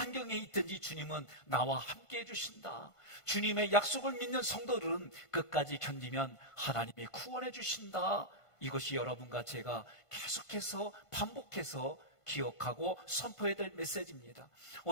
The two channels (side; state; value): right; late; 1.5 ms